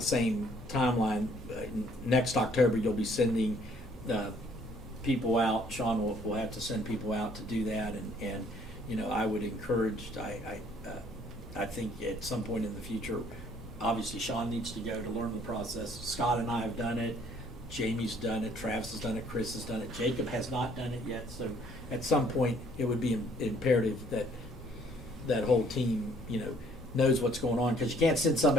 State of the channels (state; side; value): normal; both; correlation 0.61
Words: same timeline. Next October, you'll be sending people out. Sean will have to send people out to do that, and I would encourage. I think at some point in the future, obviously Sean needs to go to learn the process. Scott and I have done it. Jamie's done it. Travis has done it. Chris has done it. Jacob has not done it yet. So at some point, it would be imperative that that whole team, knows what's going on, because you can't send